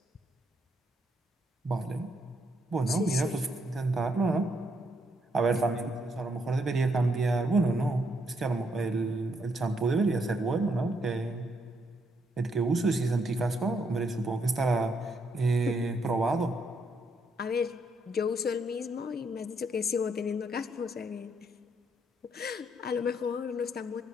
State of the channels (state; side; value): normal; both; correlation 0.75